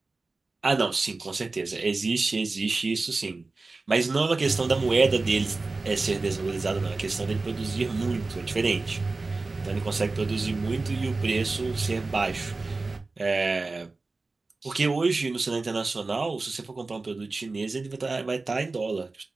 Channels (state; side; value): quieter; left; 3.6 dB